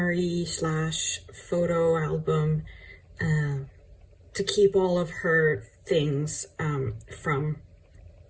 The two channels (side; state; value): both; identical; correlation 1.00